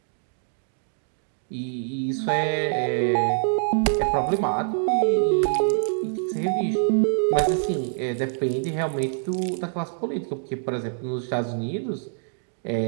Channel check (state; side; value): silent; left; digital silence